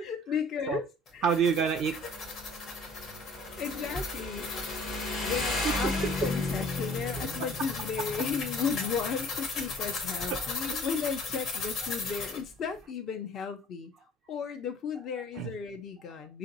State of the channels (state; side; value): normal; both; correlation 0.52